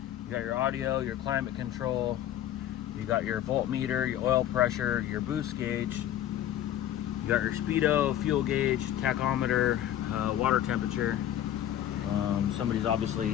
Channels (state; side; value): quieter; right; 11.8 dB